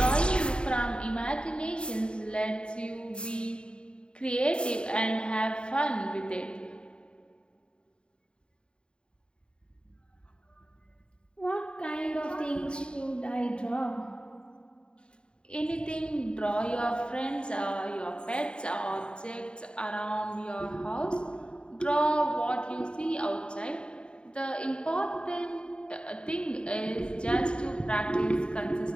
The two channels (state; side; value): late; right; 0.052 ms